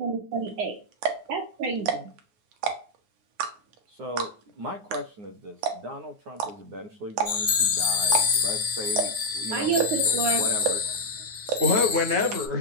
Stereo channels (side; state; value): left; late; 9.6 ms